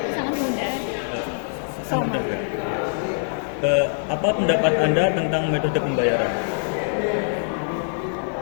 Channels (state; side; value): silent; right; digital silence